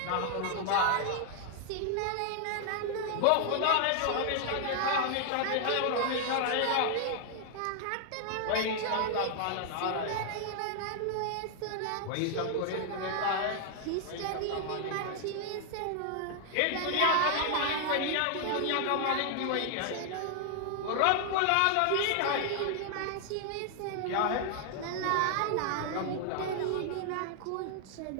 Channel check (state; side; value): different; both; correlation 0.00